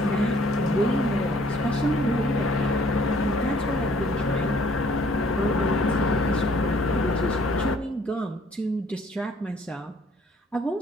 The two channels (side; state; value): both; normal; correlation 0.60